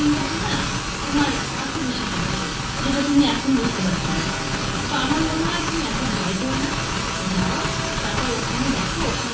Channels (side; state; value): both; identical; correlation 1.00